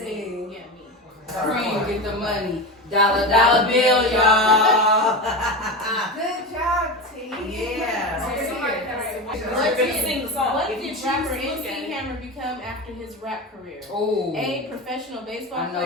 me. Yeah, me. Cream, get the money. Dollar, dollar bill, y'all. Good job, T. Yeah. What did rapper choose MC Hammer become after his rap career? Oh. A. Professional baseball I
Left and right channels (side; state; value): both; normal; correlation 0.23